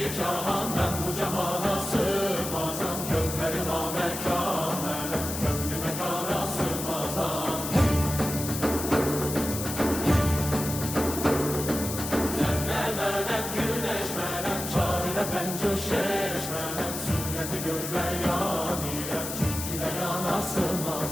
cahan ben bu cahana sığmazam. Gövheri namekamelen kömrü mekana sığmazam. Zerre melem güneş melem çarine pencoşeş melem. Sureti görme yanilem çünkü de yana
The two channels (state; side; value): noise; left; hiss, 6 dB below the sound